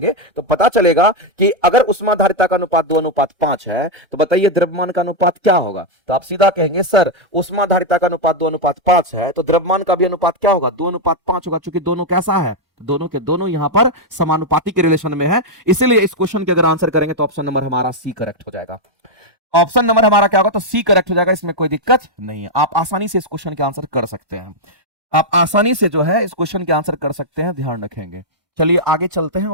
तो पता चलेगा कि अगर उष्माधारिता का अनुपात 2:5 है, तो बताइए द्रव्यमान का अनुपात क्या होगा। तो आप सीधा कहेंगे सर उष्माधारिता का अनुपात 2:5 है, तो द्रव्यमान का भी अनुपात क्या होगा, 2:5 होगा। चूंकि दोनों कैसा है, दोनों के दोनों यहां पर समानुपाती के रिलेशन में है। इसलिए इस क्वेश्चन के अगर आंसर करेंगे तो ऑप्शन नंबर हमारा सी करेक्ट हो जाएगा। ऑप्शन नंबर हमारा क्या होगा, तो सी करेक्ट हो जाएगा। इसमें कोई दिक्कत नहीं है, आप आसानी से इस क्वेश्चन के आंसर कर सकते हैं। आप आसानी से जो है इस क्वेश्चन के आंसर कर सकते हैं, ध्यान रखेंगे। चलिए आगे चलते हैं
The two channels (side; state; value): left; late; 1.1 ms